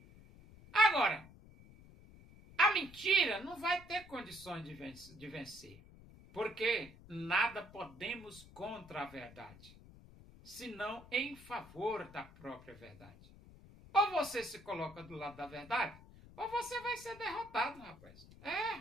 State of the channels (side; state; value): left; noise; rumble, 20 dB below the sound